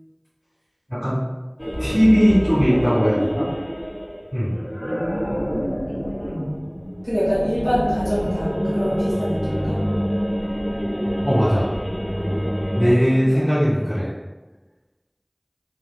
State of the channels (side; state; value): both; identical; correlation 1.00